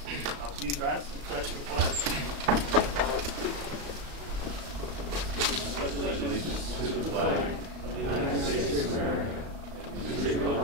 Please rise and pledge the flag. I pledge allegiance to the flag of the United States of America and to the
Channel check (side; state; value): left; late; 35 ms